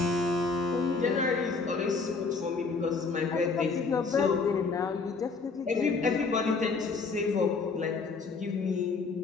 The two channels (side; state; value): right; quieter; 4.4 dB